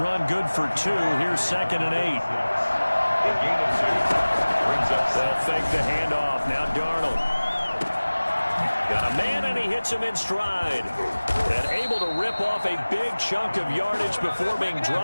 good for 2. Here's 2nd and 8. They'll fake the handoff. Now Darnold. Got a man, and he hits him in stride. And able to rip off a big chunk of yardage before being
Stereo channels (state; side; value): inverted; both; correlation -1.00